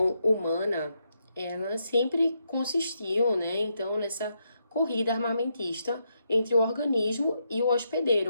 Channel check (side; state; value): both; inverted; correlation -0.81